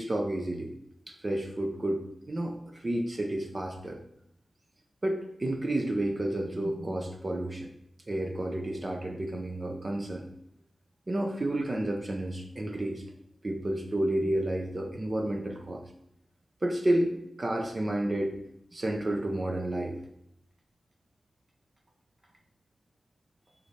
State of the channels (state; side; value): normal; both; correlation 0.95